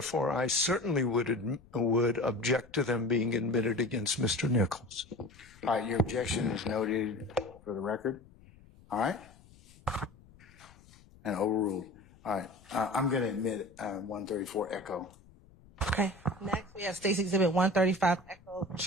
I certainly would object to them being admitted against Mr. Nichols. All right, your objection is noted for the record. All right? And overruled. All right, I'm going to admit 134 Echo. Okay. Next, we have State's Exhibit 135 Echo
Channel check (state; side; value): noise; left; rumble, 25 dB below the sound